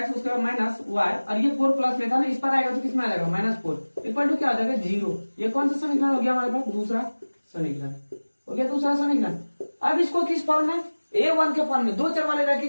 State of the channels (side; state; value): both; inverted; correlation -1.00